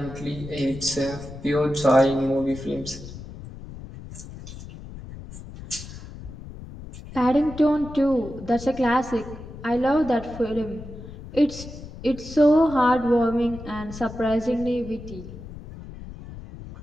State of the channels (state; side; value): noise; left; rumble, 13 dB below the sound